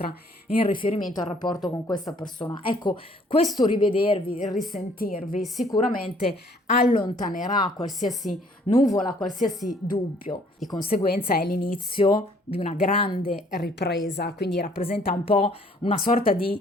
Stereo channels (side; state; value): both; normal; correlation 0.60